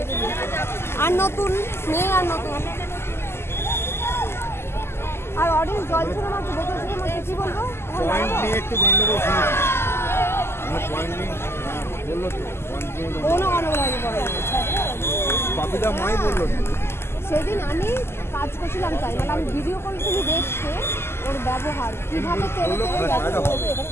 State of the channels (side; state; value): right; late; 0.12 ms